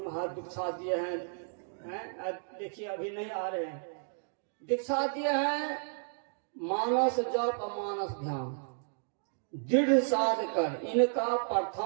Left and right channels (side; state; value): left; silent; digital silence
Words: हाथ दीक्षा दिए हैं, देखिए अभी नहीं आ रहे हैं, दीक्षा दिए हैं मानस जप मानस ध्यान दृढ़ साध कर इनका